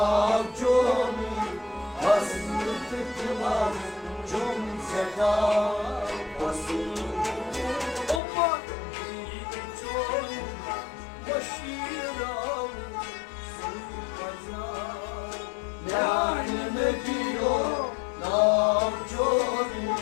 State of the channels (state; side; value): drops out; right; at 8.2 s